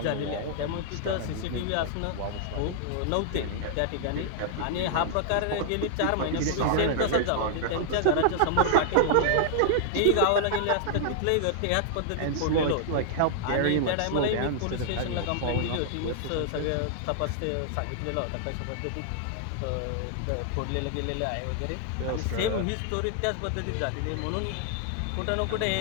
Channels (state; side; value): different; both; correlation -0.01